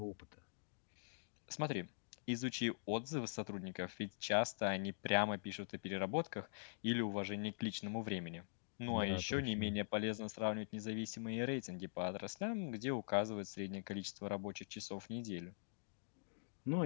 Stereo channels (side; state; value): right; silent; digital silence